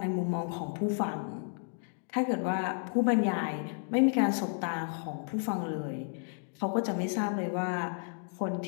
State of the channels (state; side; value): silent; right; 56 dB below the other